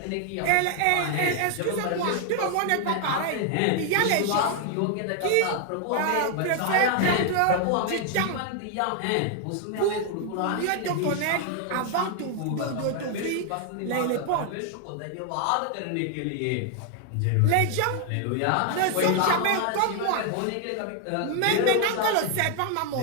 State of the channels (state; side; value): different; both; correlation 0.00